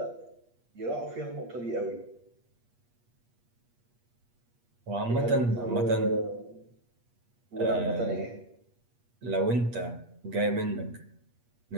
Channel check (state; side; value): late; left; 8.4 ms